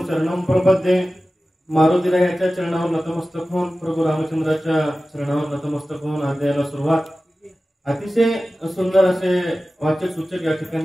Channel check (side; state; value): both; normal; correlation 0.95